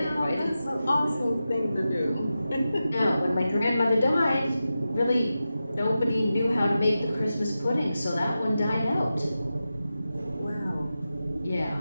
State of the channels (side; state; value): both; inverted; correlation -0.92